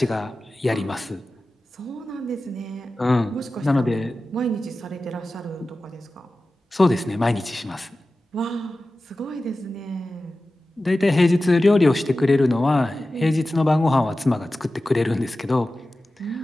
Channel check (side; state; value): both; normal; correlation 0.95